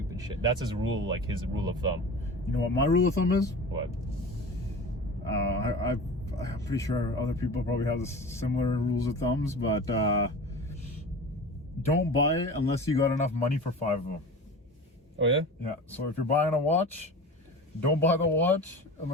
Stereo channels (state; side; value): normal; both; correlation 0.34